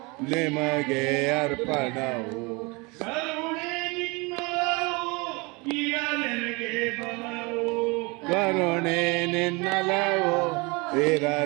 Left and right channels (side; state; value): left; quieter; 27.3 dB